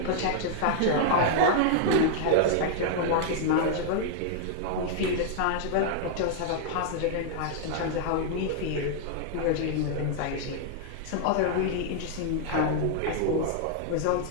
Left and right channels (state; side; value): different; both; correlation -0.01